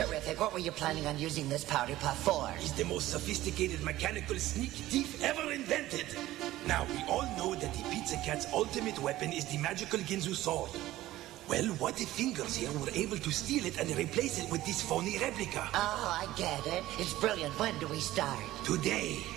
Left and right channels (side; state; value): left; quieter; 15.7 dB